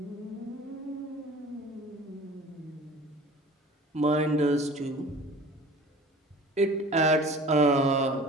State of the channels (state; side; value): normal; both; correlation 0.43